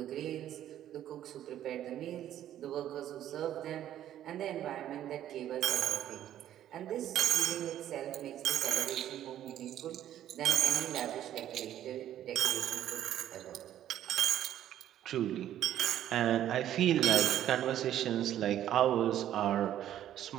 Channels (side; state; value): left; quieter; 11.6 dB